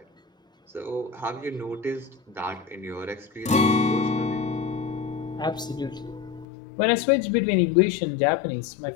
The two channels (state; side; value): drops out; right; at 6.5 s